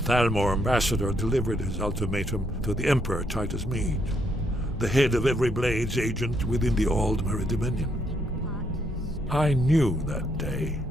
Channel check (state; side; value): normal; both; correlation 0.74